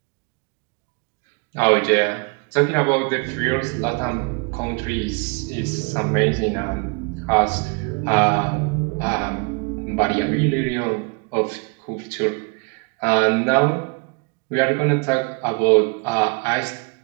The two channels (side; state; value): left; quieter; 32.0 dB